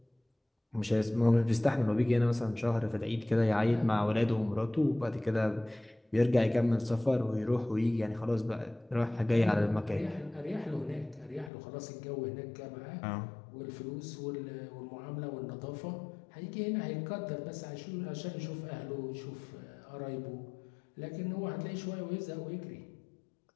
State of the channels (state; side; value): drops out; right; at 11.5 s